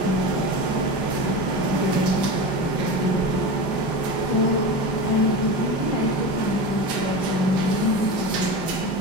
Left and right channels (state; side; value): late; right; 5.0 ms